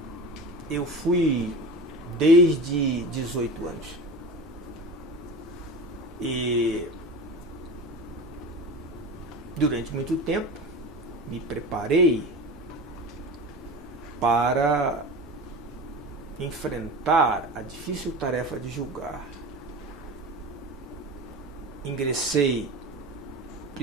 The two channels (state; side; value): normal; both; correlation 0.31